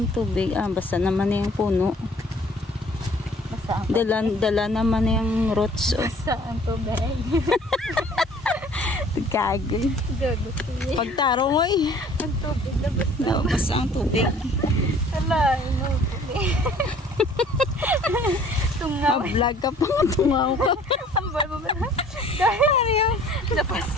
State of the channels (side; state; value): both; normal; correlation 0.53